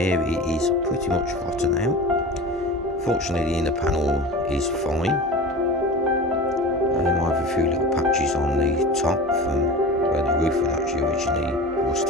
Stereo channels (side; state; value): both; normal; correlation 0.32